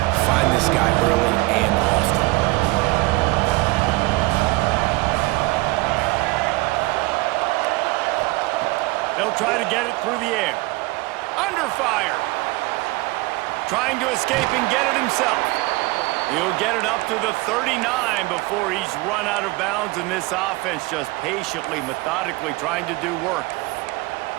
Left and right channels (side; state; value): left; quieter; 22.2 dB